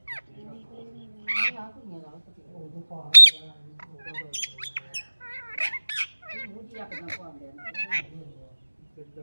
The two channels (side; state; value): both; inverted; correlation -1.00